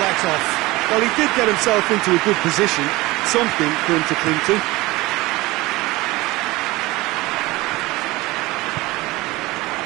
Well, he did get himself into a good position, something for him to cling to.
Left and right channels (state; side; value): quieter; left; 20.4 dB